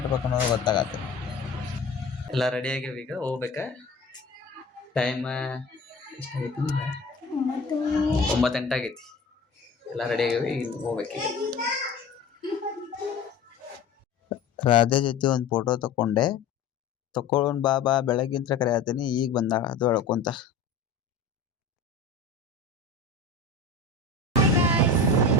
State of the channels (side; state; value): right; quieter; 4.1 dB